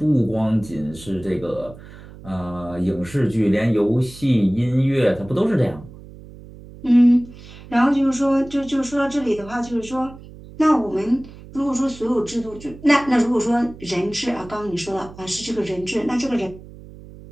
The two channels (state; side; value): noise; right; hum, 18 dB below the sound